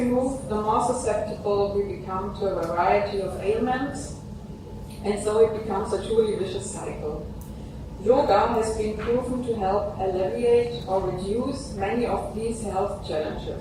move, the more susceptible we become to a variety of ailments, and so it becomes a truly vicious cycle. Yoga has been proven to help alleviate or reduce many of these health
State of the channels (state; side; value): identical; both; correlation 1.00